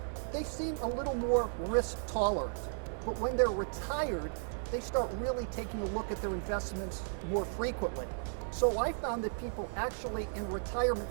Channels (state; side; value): silent; left; digital silence